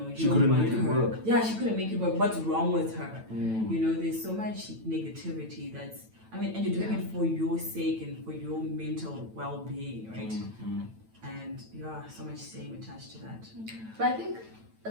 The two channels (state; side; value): late; left; 9.1 ms